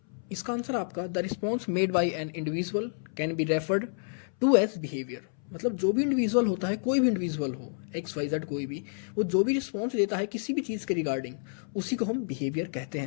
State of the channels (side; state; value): right; silent; 58 dB below the other